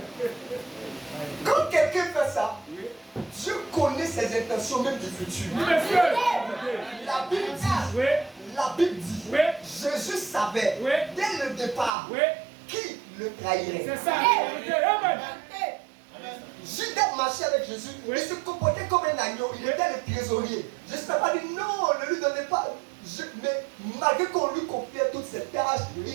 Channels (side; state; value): left; drops out; at 11.9 s